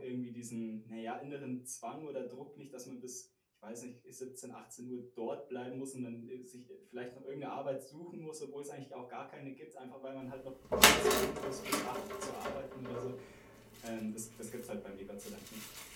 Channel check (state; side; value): identical; both; correlation 1.00